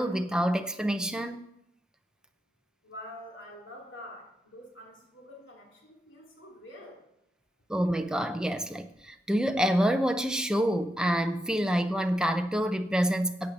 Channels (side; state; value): both; normal; correlation 0.86